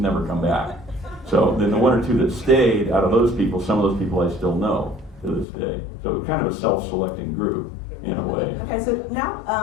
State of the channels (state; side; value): drops out; right; at 5.5 s